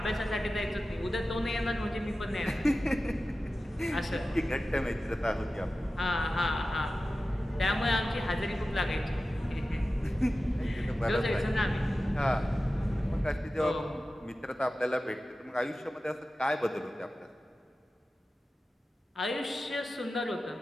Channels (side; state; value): both; normal; correlation 0.95